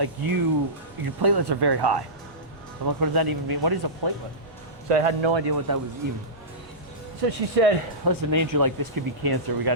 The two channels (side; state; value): both; normal; correlation -0.18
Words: your platelets are very high. I'm like, what does that even mean? What is a platelet? So I had no idea what that was even. So she said, listen, Andrew, like, this could be cancer. We got